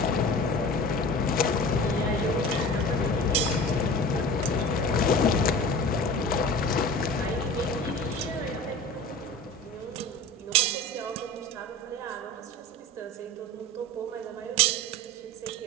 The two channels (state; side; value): normal; both; correlation 0.37